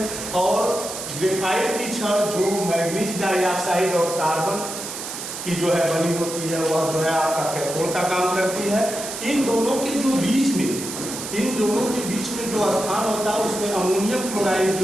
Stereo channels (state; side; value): noise; right; hiss, 7 dB below the sound